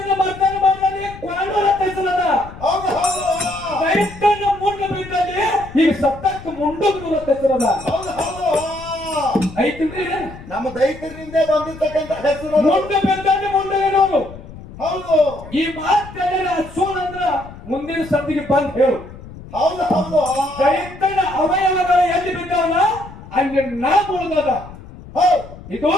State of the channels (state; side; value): noise; left; rumble, 16 dB below the sound